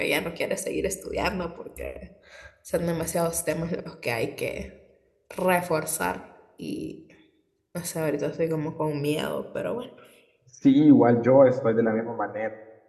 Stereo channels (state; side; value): identical; both; correlation 1.00